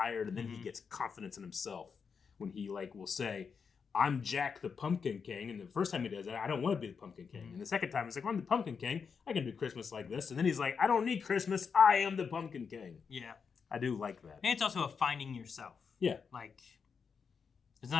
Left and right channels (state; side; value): quieter; right; 6.0 dB